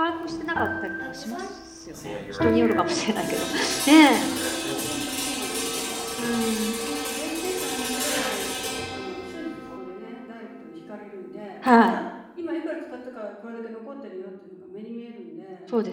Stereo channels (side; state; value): both; identical; correlation 1.00